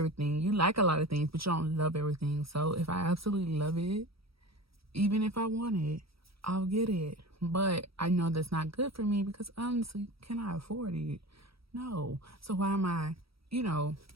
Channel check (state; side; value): late; left; 0.76 ms